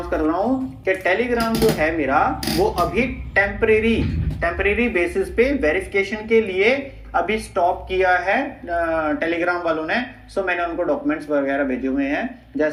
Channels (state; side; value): identical; both; correlation 1.00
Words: कर रहा हूं कि टेलीग्राम जो है मेरा, वो अभी टेम्परेरी बेसिस पे वेरिफिकेशन के लिए अभी स्टॉप किया है टेलीग्राम वालों ने। सो मैंने उनको डॉक्यूमेंट्स वगैरह भेजे हुए हैं,